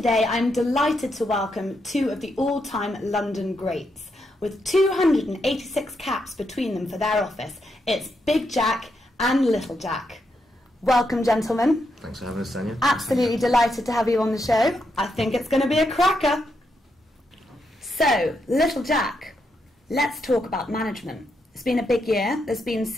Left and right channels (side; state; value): both; normal; correlation 0.81